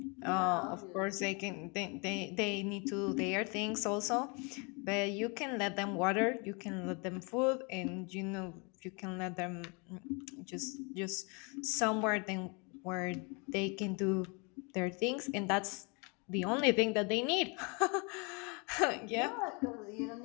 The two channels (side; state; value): right; quieter; 31.6 dB